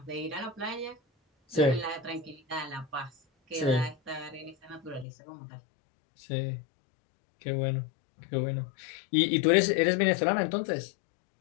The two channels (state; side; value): drops out; right; at 5.1 s